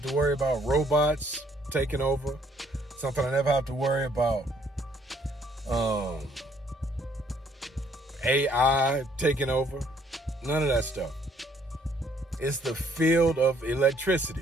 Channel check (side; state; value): both; normal; correlation 0.65